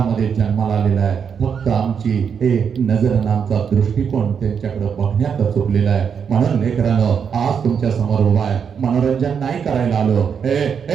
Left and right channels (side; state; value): left; quieter; 7.0 dB